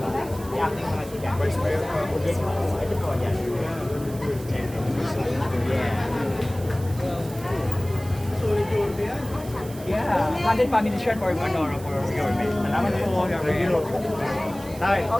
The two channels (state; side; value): noise; right; hiss, 18 dB below the sound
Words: Vice Mayor pa ako dito. Yeah, candid family shirt for Manoro for your mate. Salamat po. Tay.